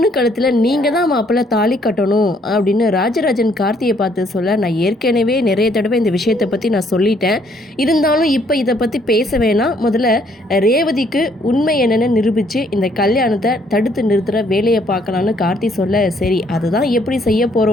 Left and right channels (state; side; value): normal; both; correlation 0.66